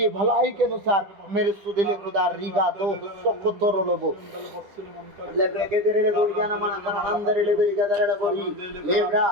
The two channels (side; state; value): left; late; 10 ms